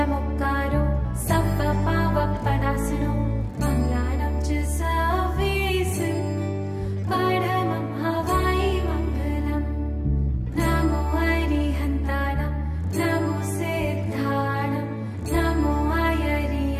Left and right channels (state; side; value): identical; both; correlation 1.00